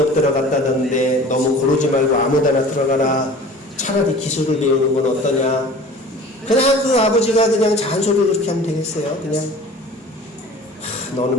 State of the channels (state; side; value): normal; both; correlation 0.43